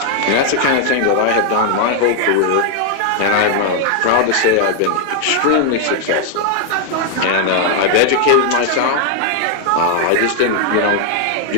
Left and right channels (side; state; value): both; different; correlation 0.00